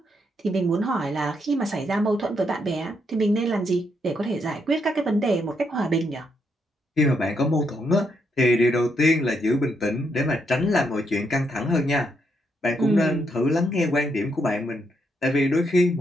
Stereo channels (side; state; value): both; normal; correlation 0.78